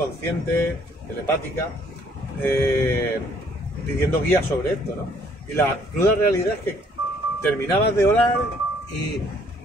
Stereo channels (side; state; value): both; normal; correlation 0.63